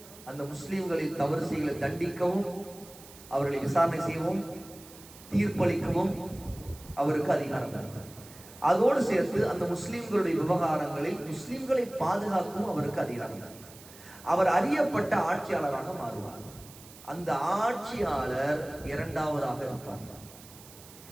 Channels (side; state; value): right; noise; hiss, 19 dB below the sound